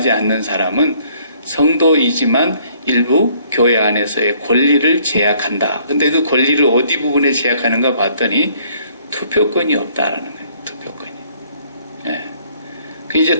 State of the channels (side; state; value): both; inverted; correlation -0.62